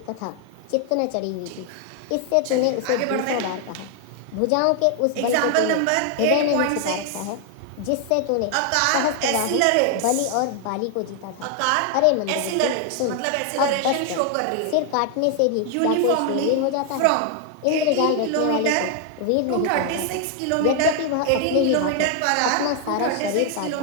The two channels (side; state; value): both; different; correlation 0.00